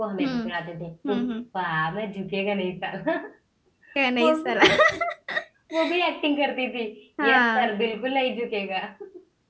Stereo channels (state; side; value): identical; both; correlation 1.00